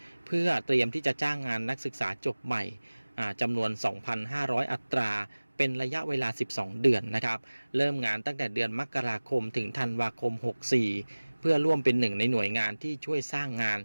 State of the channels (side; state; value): both; inverted; correlation -1.00